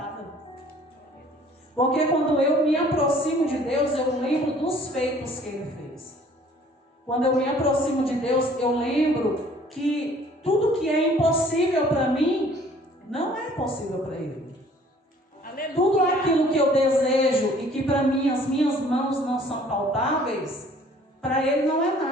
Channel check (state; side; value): normal; both; correlation 0.55